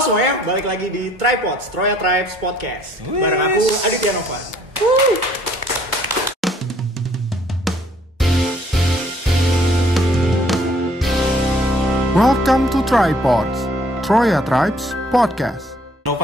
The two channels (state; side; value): normal; both; correlation 0.61